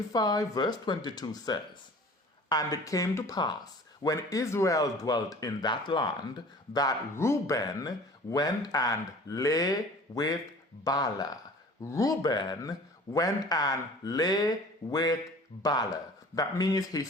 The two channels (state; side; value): normal; both; correlation 0.45